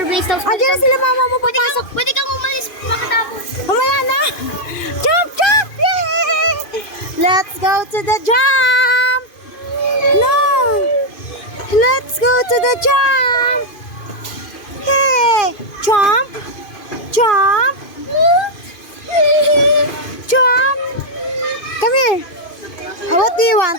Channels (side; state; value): right; late; 2.5 ms